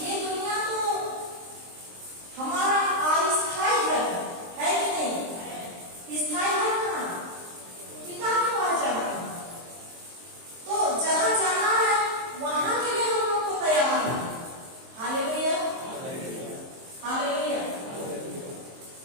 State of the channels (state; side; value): late; left; 23 ms